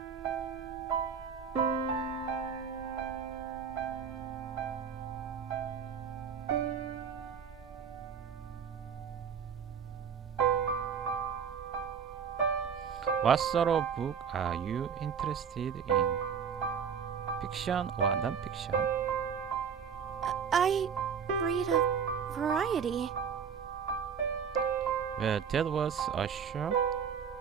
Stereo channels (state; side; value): quieter; left; 7.0 dB